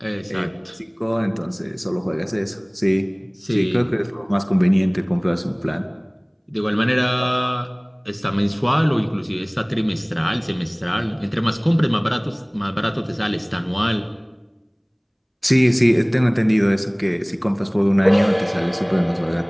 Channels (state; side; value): identical; both; correlation 1.00